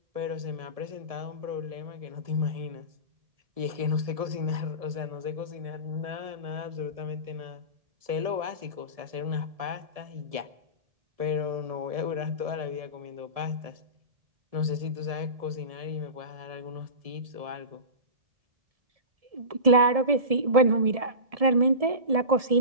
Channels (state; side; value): late; left; 1.7 ms